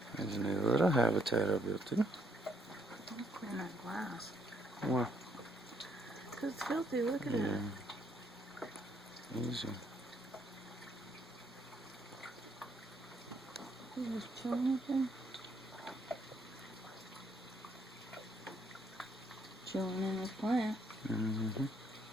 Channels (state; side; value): normal; both; correlation 0.71